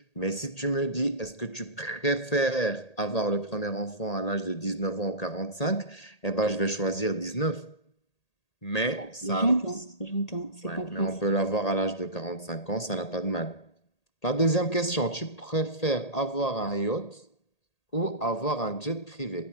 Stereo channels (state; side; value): late; right; 1.8 ms